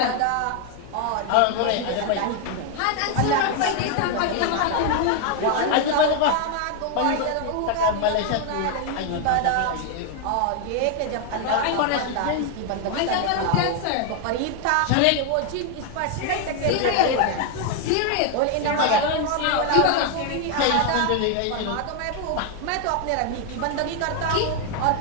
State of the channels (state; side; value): different; both; correlation 0.01